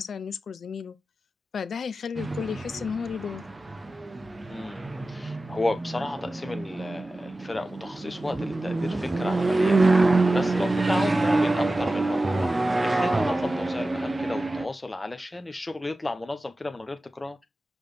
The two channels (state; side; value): normal; both; correlation 0.94